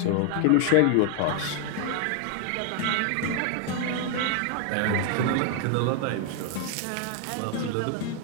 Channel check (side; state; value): both; different; correlation 0.00